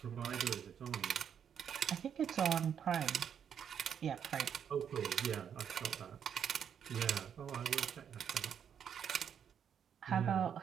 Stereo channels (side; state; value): left; quieter; 8.2 dB